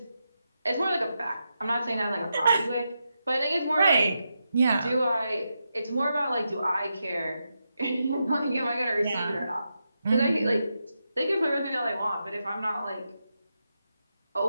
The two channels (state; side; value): inverted; both; correlation -0.86